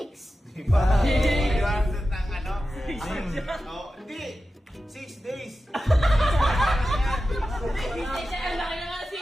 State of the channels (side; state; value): both; normal; correlation 0.93